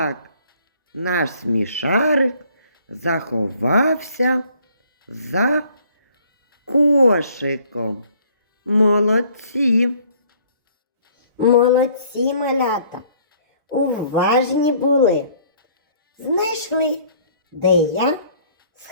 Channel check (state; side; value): inverted; both; correlation -0.59